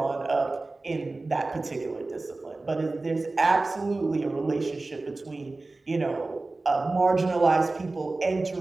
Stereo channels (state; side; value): quieter; left; 3.3 dB